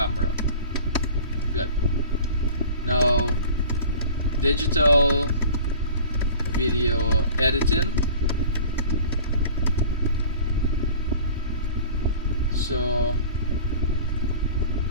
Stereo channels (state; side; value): inverted; both; correlation -0.43